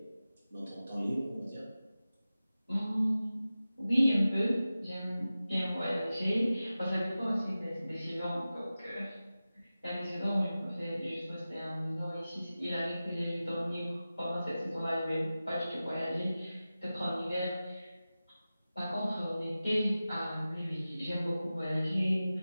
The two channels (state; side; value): inverted; both; correlation -0.95